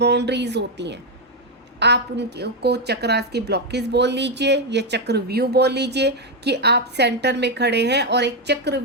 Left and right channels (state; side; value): normal; both; correlation 0.04